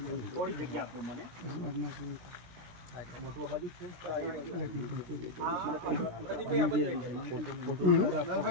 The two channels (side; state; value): left; late; 17 ms